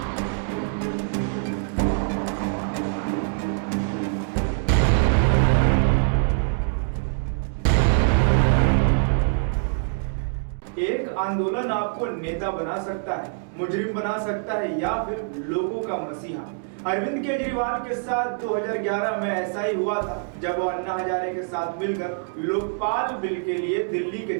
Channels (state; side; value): silent; left; digital silence